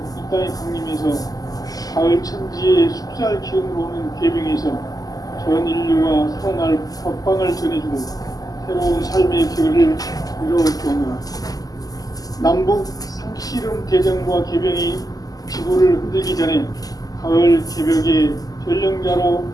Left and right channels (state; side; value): late; right; 0.17 ms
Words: 이 땅에 강림해서 가을 천지의 숲살 기운으로 오는 계병에서 전 인류와 살아날 법방을 전해주고 새로운 삶의 기회를 이뤄주었노라. 남북 상씨름 대전과 계병이 지구를 흔들기 전에 가을 개벽의 전령자로